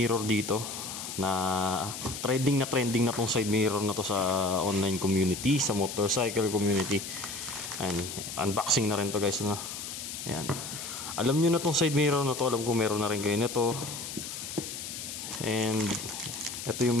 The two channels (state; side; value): noise; left; hiss, 8 dB below the sound